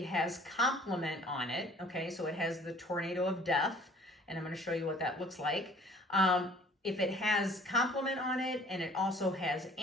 has complement on it, okay, so it has the tornado of death, and I'm going to show you what that looks like. If it has complement on it and it also has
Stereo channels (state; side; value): normal; both; correlation 0.53